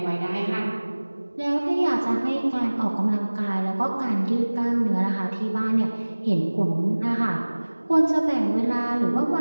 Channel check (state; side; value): inverted; both; correlation -1.00